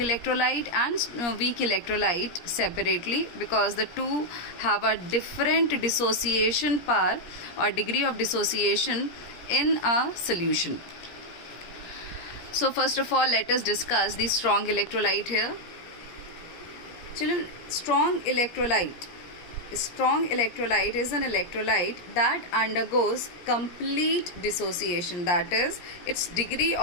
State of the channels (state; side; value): late; right; 17 ms